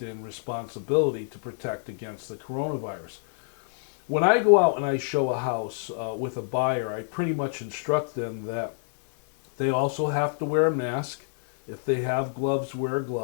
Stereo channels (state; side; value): silent; right; digital silence